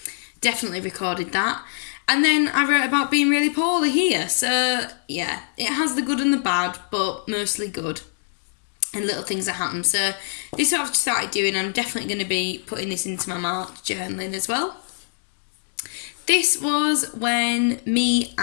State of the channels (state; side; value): silent; right; digital silence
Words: definitely recorded that. And then I wrote about being really poorly here. So, yeah, it has the good and the bad, but mostly good. And little things that happen. So, this is what I've started doing. I'm definitely going to be putting this into my March journaling as well. This was when me